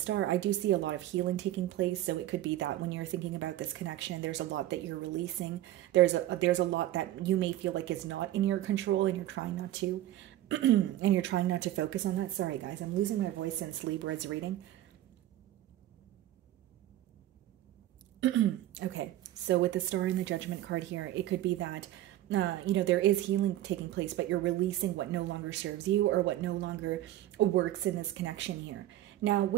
I do see a lot of healing taking place. So it could be that when you're thinking about this connection, there's a lot that you're releasing. There's a lot that you may feel like is not in your control, and you're trying not to, and you're trying not to focus on that. Sorry guys, I'm losing my voice since Libra's reading. Okay, so with the Star and the Judgment card here, it could be that, there is healing taking place, but you're releasing what no longer serves you, or what no longer works in this connection here. Now,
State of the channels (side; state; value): left; quieter; 14.0 dB